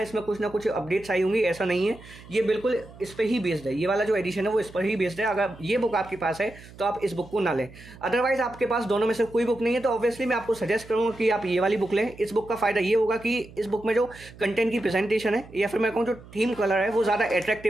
इसमें कुछ ना कुछ अपडेट्स आई होंगी, ऐसा नहीं है। ये बिल्कुल इस पर ही बेस्ड है, ये वाला जो एडिशन है वो इस पर ही बेस्ड है। अगर ये बुक आपके पास है तो आप इस बुक को ना लें। अदरवाइज आपके पास दोनों में से कोई बुक नहीं है तो ऑब्वियसली मैं आपको सजेस्ट करूँगा कि आप ये वाली बुक लें। इस बुक का फायदा ये होगा कि इस बुक में जो कंटेंट की प्रेजेंटेशन है या फिर मैं कहूँ जो थीम कलर है वो ज़्यादा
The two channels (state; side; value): noise; right; hum, 20 dB below the sound